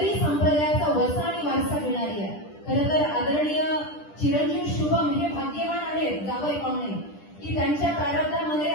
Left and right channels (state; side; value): late; right; 10 ms